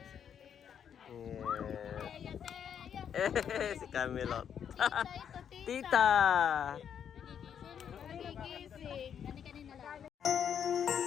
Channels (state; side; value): quieter; right; 8.3 dB